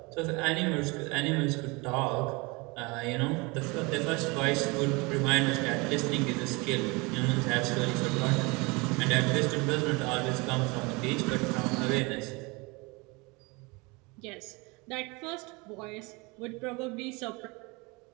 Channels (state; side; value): quieter; left; 26.6 dB